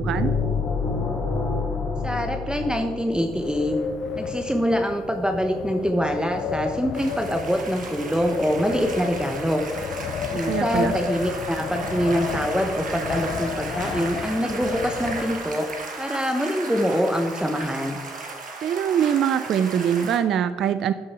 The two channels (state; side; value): normal; both; correlation 0.76